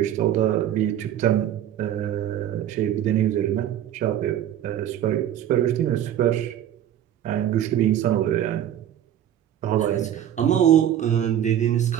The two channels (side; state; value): left; quieter; 10.9 dB